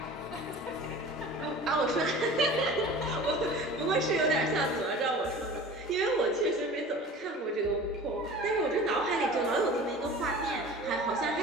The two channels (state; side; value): normal; both; correlation 0.40